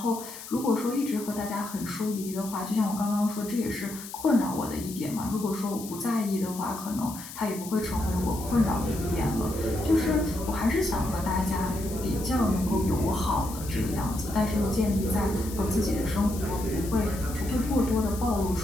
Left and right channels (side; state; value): left; noise; hiss, 13 dB below the sound